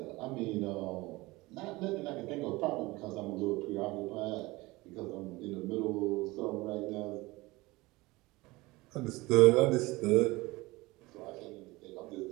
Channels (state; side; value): quieter; left; 21.4 dB